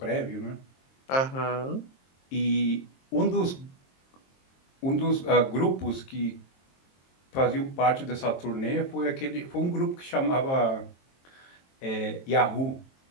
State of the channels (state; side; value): late; right; 22 ms